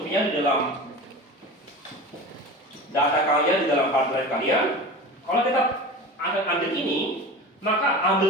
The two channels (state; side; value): normal; both; correlation 0.32